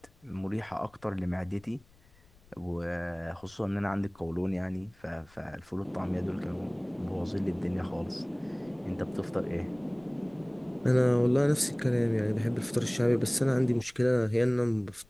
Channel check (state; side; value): noise; left; rumble, 29 dB below the sound